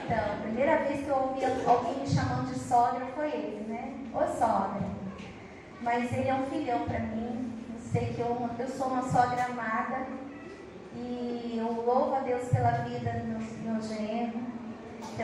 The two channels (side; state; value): both; identical; correlation 1.00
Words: Então, a primeira vez que eu ouvi alguém me chamando de sogra foi ele, né? Ô sogra. Mas ele é um filhão para mim. Eu sei que eu sou uma sogra amada. E eu louvo a Deus pela vida do meu genro,